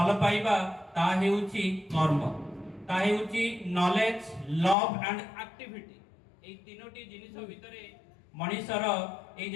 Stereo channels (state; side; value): drops out; right; at 4.8 s